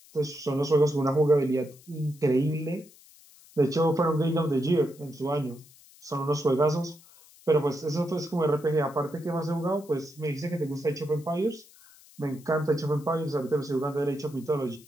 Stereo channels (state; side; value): noise; left; hiss, 25 dB below the sound